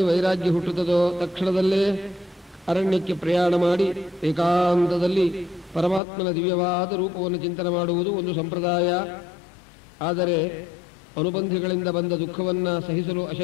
ವೈರಾಗ್ಯ ಹುಟ್ಟುತ್ತದೋ ತಕ್ಷಣದಲ್ಲೇ ಅರಣ್ಯಕ್ಕೆ ಪ್ರಯಾಣ ಮಾಡಿ ಏಕಾಂತದಲ್ಲಿ ಪರಮಾತ್ಮನ ದಿವ್ಯವಾದ ರೂಪವನ್ನು ಚಿಂತನೆ ಮಾಡುವುದು ಒಂದು ಸಂಪ್ರದಾಯ. ಆದರೆ ಅನುಬಂಧಿಗಳಿಂದ ಬಂದ ದುಃಖವನ್ನು ಸಹಿಸಲು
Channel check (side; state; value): right; drops out; at 6.0 s